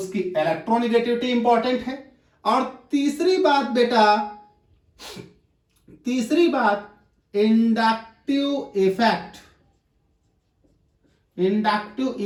इलेक्ट्रोनिगेटिविटी इंपॉर्टेंट है। और तीसरी बात inductive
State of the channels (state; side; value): identical; both; correlation 1.00